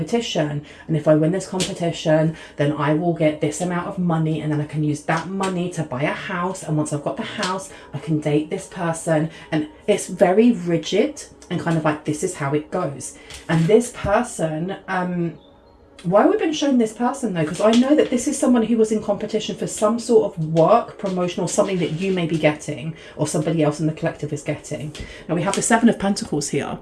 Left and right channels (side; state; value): both; identical; correlation 1.00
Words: and if I win this competition, then I will get this amount of money, and then I can use that money to buy a house, and once I've got the house, I can date this person. And it's very rigid and kind of like, this is how it goes. And this person, why have we been shown this person though? Because I know that this is someone who was in competition for some sort of work, promotion, or something that you may be getting, or somebody else in the collective is getting. Now we have the Seven of Pentacles here.